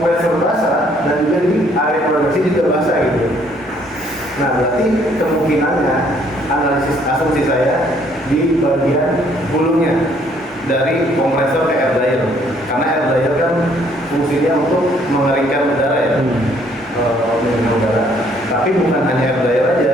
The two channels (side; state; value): both; normal; correlation 0.64